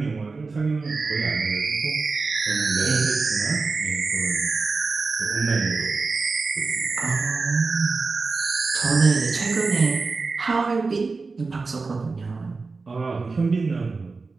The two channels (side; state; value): left; quieter; 4.1 dB